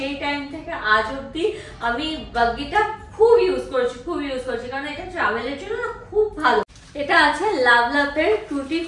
টাইম থেকে আজ অব্দি আমি বাগিটা খুব ইউজ করেছি, কারণ এটা ট্রাভেলের জন্য খুব ভালো। এটা আছে লাভলাভের টুটি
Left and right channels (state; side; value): identical; both; correlation 1.00